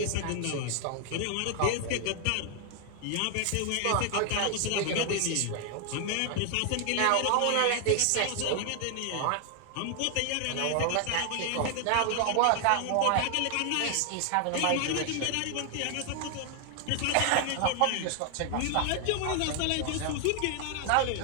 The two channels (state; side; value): different; both; correlation 0.00